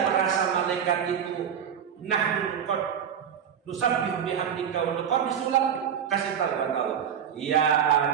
merasa malaikat itu nahnu qad nusabbihu bihamdika wa nuqaddisu lak. Kasih tahu kata Allah, ya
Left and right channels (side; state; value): left; quieter; 8.3 dB